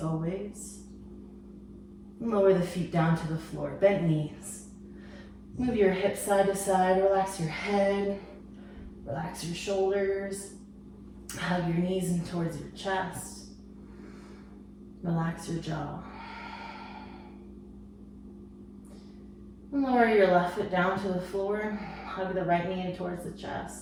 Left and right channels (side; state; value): both; identical; correlation 1.00